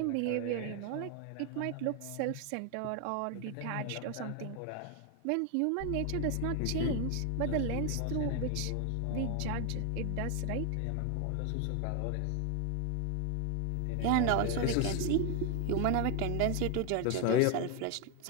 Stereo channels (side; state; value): both; different; correlation 0.01